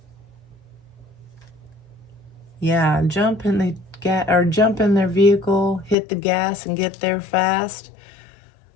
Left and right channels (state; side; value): drops out; right; at 6.0 s